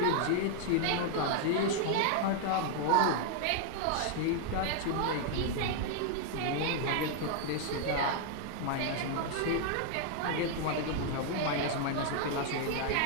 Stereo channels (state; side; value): different; both; correlation 0.00